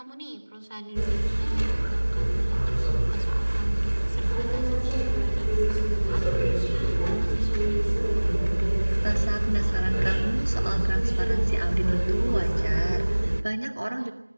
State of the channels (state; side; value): inverted; both; correlation -1.00